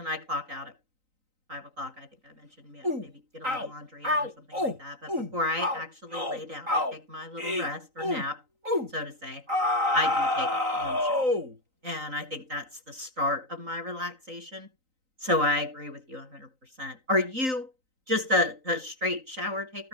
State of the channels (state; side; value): late; left; 3.9 ms